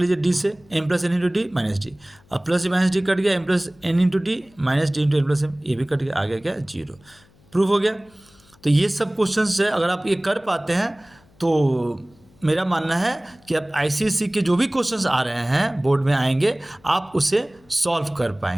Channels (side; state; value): left; noise; hum, 30 dB below the sound